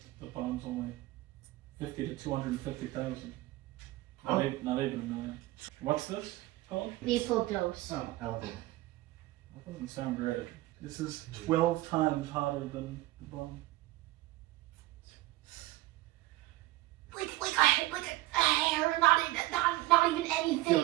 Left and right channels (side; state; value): left; quieter; 18.3 dB